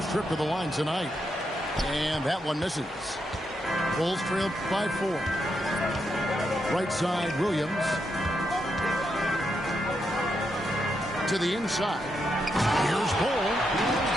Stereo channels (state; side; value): normal; both; correlation 0.82